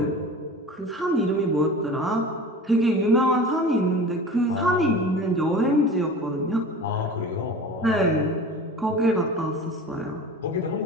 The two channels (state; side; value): normal; both; correlation 0.37